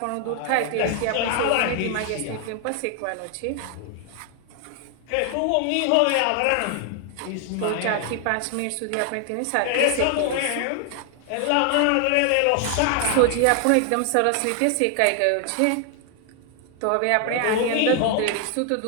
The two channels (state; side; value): different; both; correlation 0.00